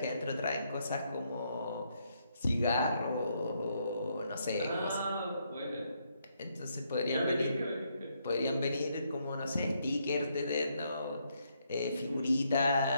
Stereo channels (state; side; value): inverted; both; correlation -0.75